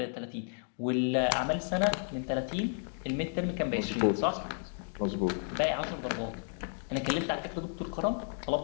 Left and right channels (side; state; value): right; silent; 56 dB below the other